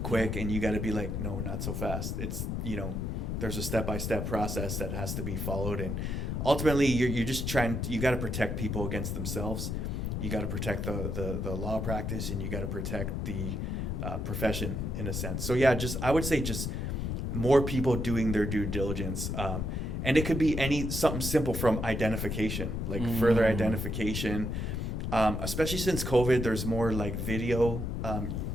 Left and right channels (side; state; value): left; noise; rumble, 2 dB below the sound